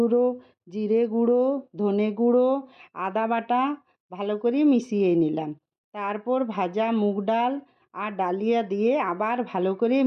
জিরে গুঁড়ো, ধনে গুঁড়ো, আদা বাটা ভালো করে মিশিয়ে নিলাম। তারপর ভাজা মুগ ডাল আর ডালিয়া দিয়ে আবার ভালো করে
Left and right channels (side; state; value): both; identical; correlation 1.00